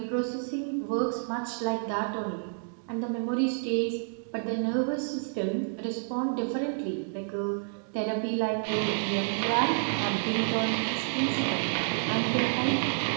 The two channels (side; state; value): left; silent; digital silence